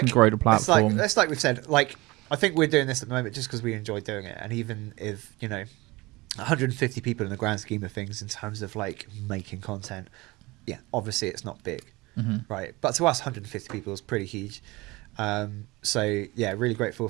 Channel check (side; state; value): left; quieter; 22.2 dB